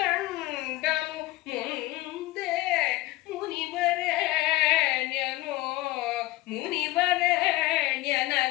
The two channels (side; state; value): right; quieter; 18.9 dB